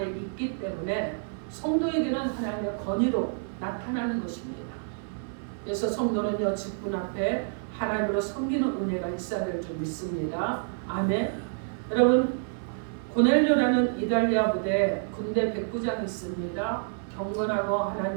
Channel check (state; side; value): silent; left; digital silence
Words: 있기 때문에 성도에게는 하나님의 권위로 나타나는 것입니다. 그래서 성도는요, 직분 앞에 하나님으로 섬기는 은혜가 있어야 될 줄 믿습니다. 아멘. 여러분, 고넬료라는 이달리아 부대 군대 백부장이 있습니다. 경건하고